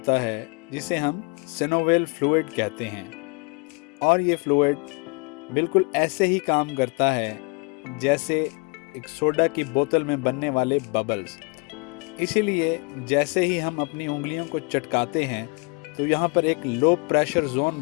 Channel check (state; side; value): quieter; right; 32.5 dB